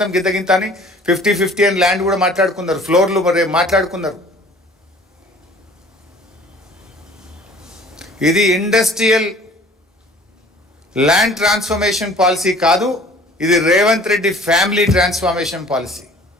గింత అని 50-50 అని ల్యాండ్ కూడా మాట్లాడుకున్నారు. ఫ్లోర్లు మరి మాట్లాడుకున్నారు. ఇది ఇండస్ట్రియల్ ల్యాండ్ ట్రాన్స్ఫర్మేషన్ పాలసీ కాదు, ఇది Revanth Reddy family transformation policy.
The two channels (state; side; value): normal; both; correlation 0.50